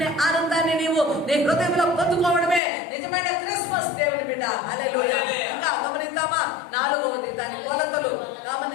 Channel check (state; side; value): drops out; right; at 2.6 s